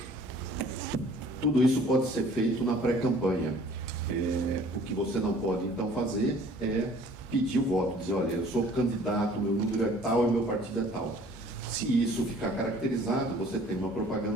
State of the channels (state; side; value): normal; both; correlation 0.53